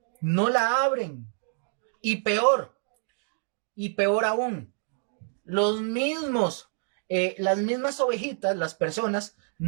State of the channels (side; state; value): left; silent; digital silence